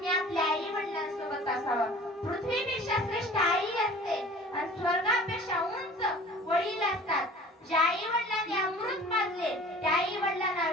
आपल्या आई वडिलांसोबत असावं. पृथ्वीपेक्षा श्रेष्ठ आई असते आणि स्वर्गापेक्षा उंच वडील असतात. ज्या आई वडिलांनी अमृत पाजले त्या आई वडिलांना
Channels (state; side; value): normal; both; correlation 0.45